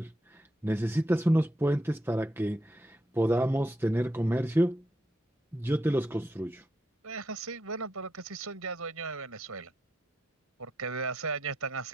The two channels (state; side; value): normal; both; correlation 0.82